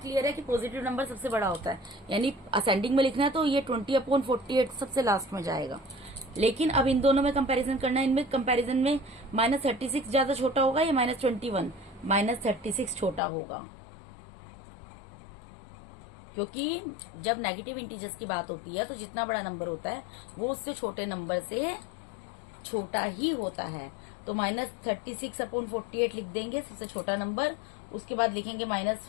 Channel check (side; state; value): right; drops out; at 13.2 s